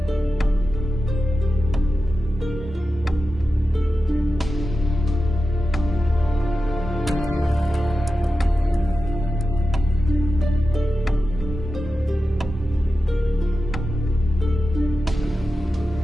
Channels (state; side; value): normal; both; correlation 0.92